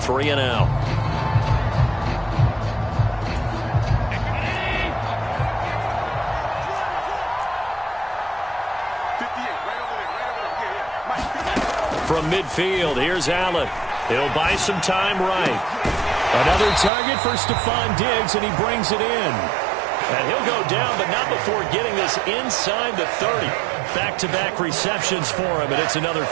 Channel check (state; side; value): drops out; left; at 16.9 s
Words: From midfield, here's Allen. He'll buy some time right. Another target for Stephon Diggs, and he brings it in. And he'll go down, but not before getting this inside the 30. Back-to-back receptions for him, and it's another